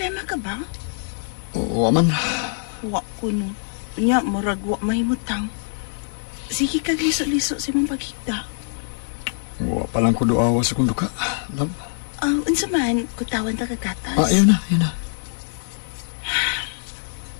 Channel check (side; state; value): right; silent; 63 dB below the other